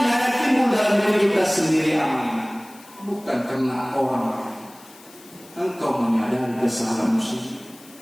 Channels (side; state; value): left; noise; hiss, 23 dB below the sound